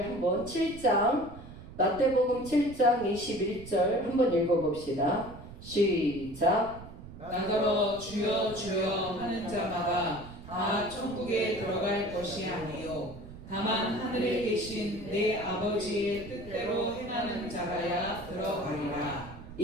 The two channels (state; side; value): noise; right; rumble, 15 dB below the sound